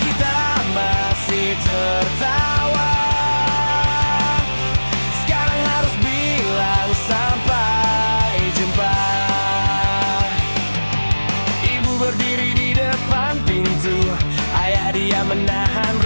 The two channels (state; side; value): inverted; both; correlation -1.00